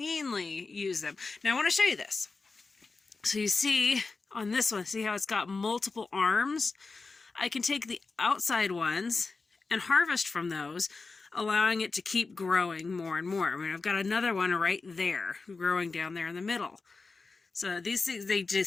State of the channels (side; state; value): right; quieter; 4.1 dB